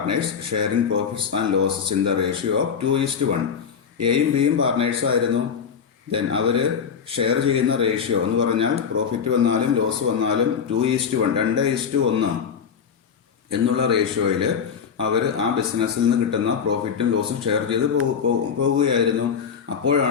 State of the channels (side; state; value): right; quieter; 6.9 dB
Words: sharing profits and losses in the ratio of 2:1. എയും ബിയും പാർട്ട്നേഴ്സ് ആയിരുന്നു. ദെൻ അവര് ഷെയർ ചെയ്യുന്ന റേഷ്യോ എന്ന് പറഞ്ഞാൽ പ്രോഫിറ്റ് വന്നാലും ലോസ് വന്നാലും 2:1, 2:1 എന്നുള്ള റേഷ്യോയിൽ അവർ ആ ബിസിനസ്സിൽ നിന്ന് കിട്ടുന്ന പ്രോഫിറ്റും ലോസും ഷെയർ ചെയ്ത് പോവുകയായിരുന്നു.